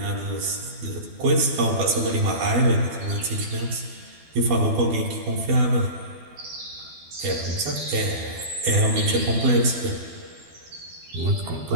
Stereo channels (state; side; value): late; left; 12 ms